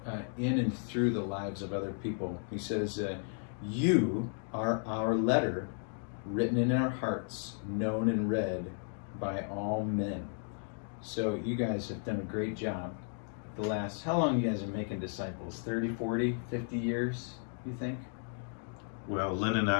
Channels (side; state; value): right; silent; 55 dB below the other